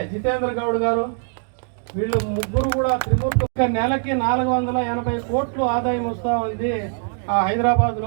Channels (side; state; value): left; silent; 60 dB below the other